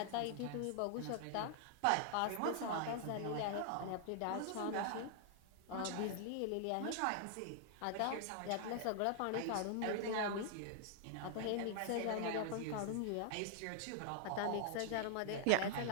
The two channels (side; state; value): both; different; correlation -0.01